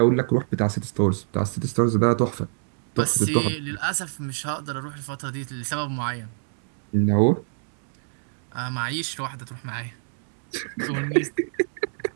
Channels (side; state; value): left; silent; digital silence